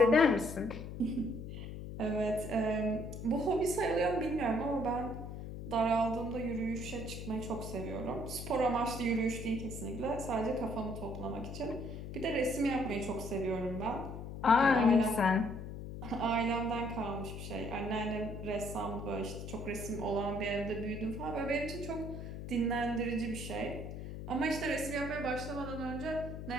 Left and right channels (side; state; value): left; noise; hum, 8 dB below the sound